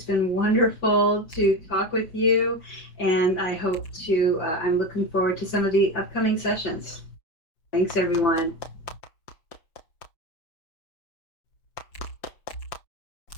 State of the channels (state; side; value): late; right; 6.1 ms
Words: been wonderful to talk with you, and I'm looking forward to some of the upcoming sessions. Thanks, everyone.